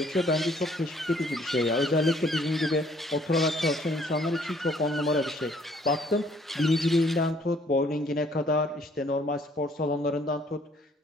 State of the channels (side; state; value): both; normal; correlation 0.62